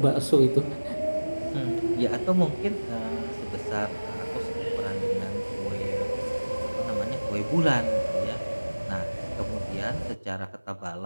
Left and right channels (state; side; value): inverted; both; correlation -1.00